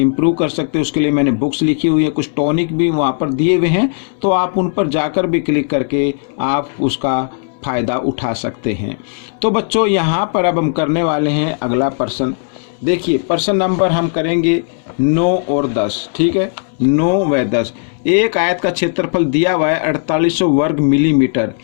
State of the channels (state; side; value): silent; right; 65 dB below the other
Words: कर सकते हैं उसके लिए मैंने बुक्स लिखी हुई है, कुछ टॉनिक भी वहाँ पर दिए हुए हैं, तो आप उन पर जाकर भी क्लिक करके आप उसका फ़ायदा उठा सकते हैं। तो बच्चों यहाँ पर अब हम करने वाले हैं अगला प्रश्न। देखिए प्रश्न नंबर हम करेंगे 9 और 10। ठीक है, 9 व 10। एक आयत का क्षेत्रफल दिया हुआ है 4800 वर्ग मिलीमीटर